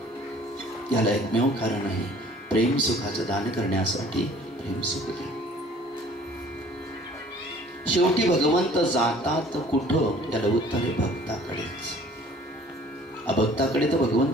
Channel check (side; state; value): both; normal; correlation 0.52